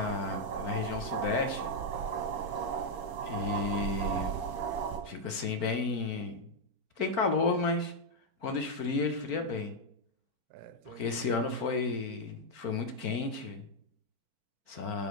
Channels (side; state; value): left; late; 4.5 ms